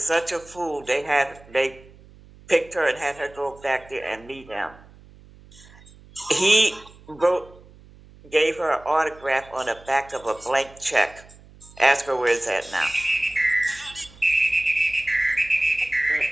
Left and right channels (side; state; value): right; noise; hum, 23 dB below the sound